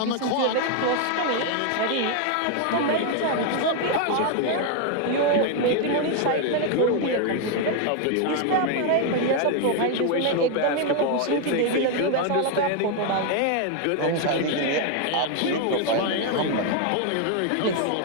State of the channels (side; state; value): both; different; correlation 0.01